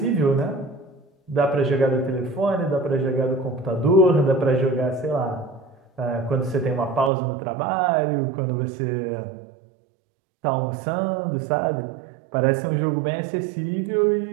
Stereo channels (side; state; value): left; drops out; at 7.1 s